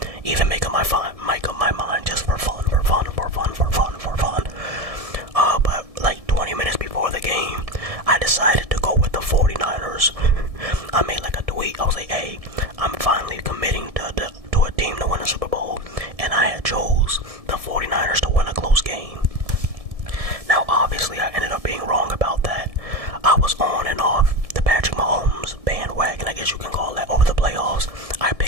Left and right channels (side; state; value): left; late; 1.7 ms